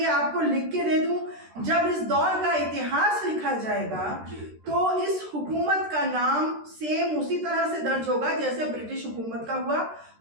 आपको लिख के दे दूं, जब इस दौर का इतिहास लिखा जाएगा तो इस हुकूमत का नाम सेम उसी तरह से दर्ज होगा जैसे ब्रिटिश हुकूमत का हुआ,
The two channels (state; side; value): late; left; 13 ms